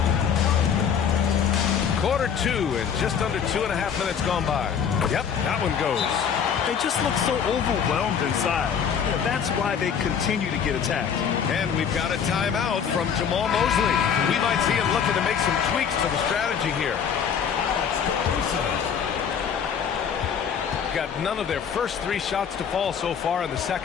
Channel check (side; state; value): right; quieter; 7.4 dB